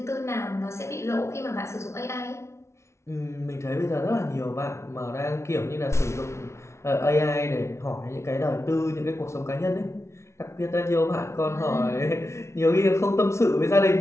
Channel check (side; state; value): right; late; 0.13 ms